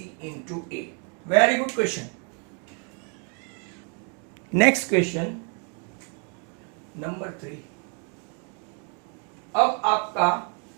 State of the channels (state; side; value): quieter; left; 38.2 dB